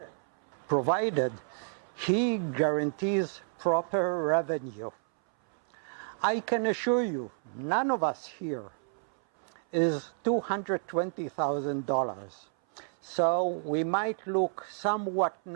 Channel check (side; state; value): left; silent; 58 dB below the other